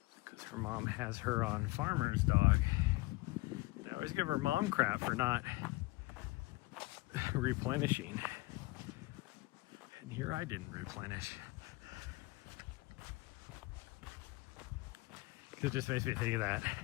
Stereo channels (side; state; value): right; quieter; 21.7 dB